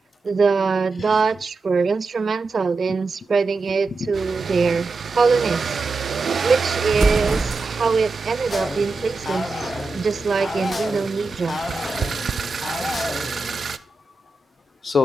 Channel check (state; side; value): quieter; left; 3.7 dB